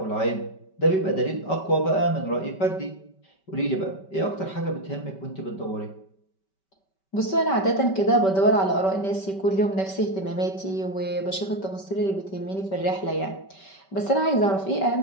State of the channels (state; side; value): late; right; 5.2 ms